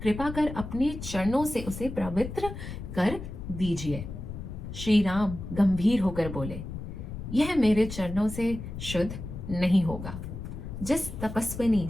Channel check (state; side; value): noise; left; rumble, 9 dB below the sound